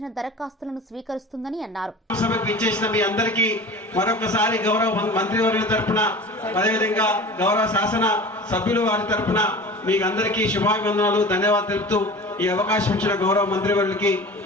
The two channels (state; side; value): normal; both; correlation 0.37